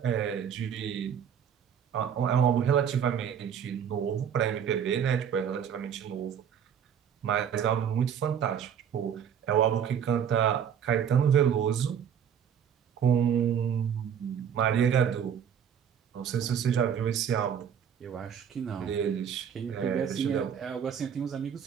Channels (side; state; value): left; quieter; 8.3 dB